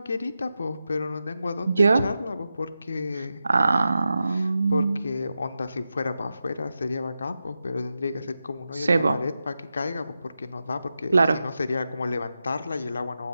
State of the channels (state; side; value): inverted; both; correlation -0.90